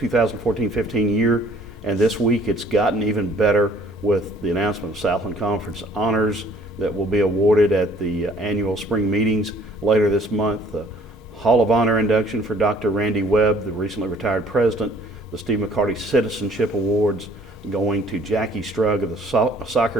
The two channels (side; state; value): both; normal; correlation 0.57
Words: year, and this week it's gotten even better with the announcement of Southland Conference honors that will be awarded at the annual spring meetings later this month. The Hall of Honor induction for Dr. Webb, the recently retired president. The Steve McCarty Citizenship Awards going to Jackie Strug of the